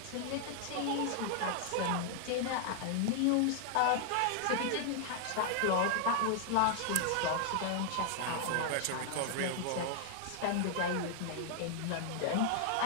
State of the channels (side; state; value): both; different; correlation 0.00